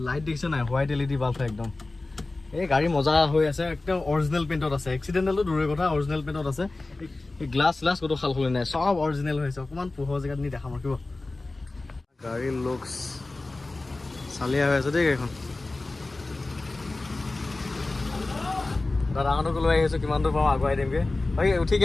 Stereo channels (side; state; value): right; quieter; 3.2 dB